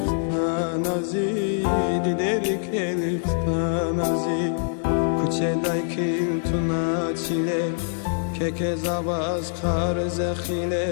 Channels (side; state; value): right; silent; digital silence